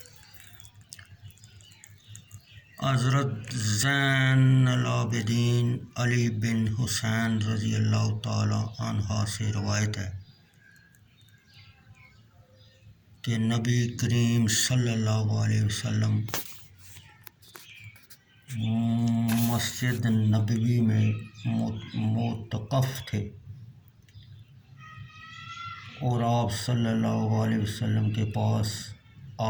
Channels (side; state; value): both; identical; correlation 1.00